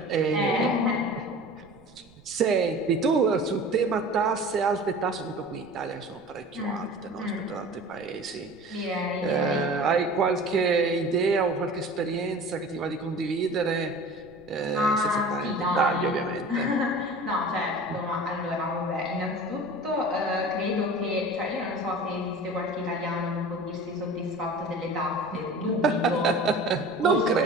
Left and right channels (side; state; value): right; noise; rumble, 27 dB below the sound